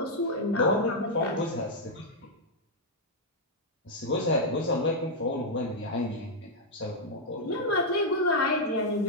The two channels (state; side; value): normal; both; correlation -0.04